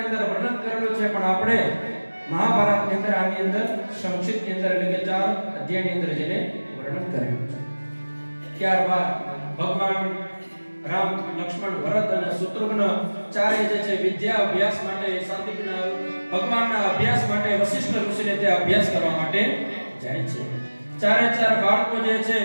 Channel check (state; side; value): inverted; both; correlation -1.00